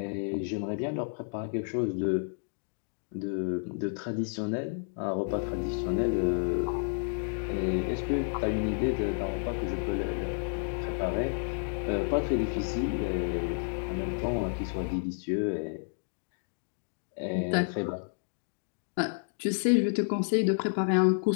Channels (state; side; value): silent; right; digital silence